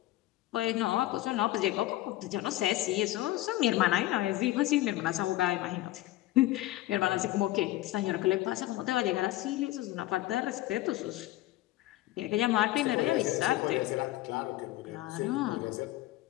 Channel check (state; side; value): quieter; right; 16.5 dB